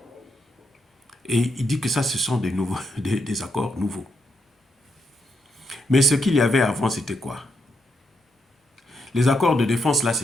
Et il dit que ça, ce sont des accords nouveaux. Mais ce qu'il y avait avant, c'était quoi? Les accords de défense, là,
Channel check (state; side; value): normal; both; correlation 0.80